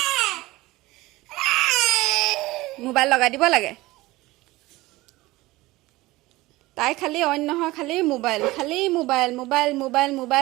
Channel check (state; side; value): quieter; left; 19.5 dB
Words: মোবাইল লগাই দিব লাগে। তাই খালি অইন নহয়, খালি